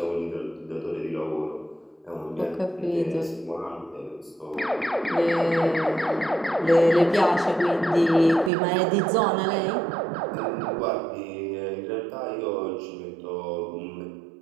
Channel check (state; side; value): drops out; left; at 8.5 s